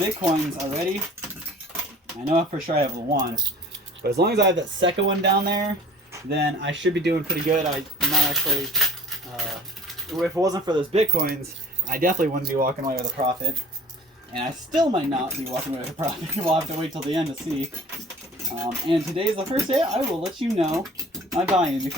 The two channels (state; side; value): normal; both; correlation 0.48